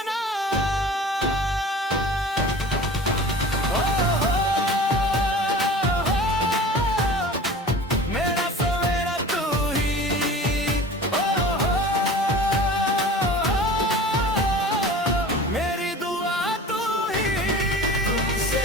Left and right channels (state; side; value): normal; both; correlation 0.40